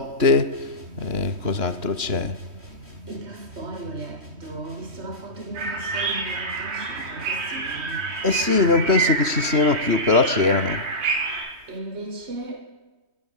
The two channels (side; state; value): left; late; 2.9 ms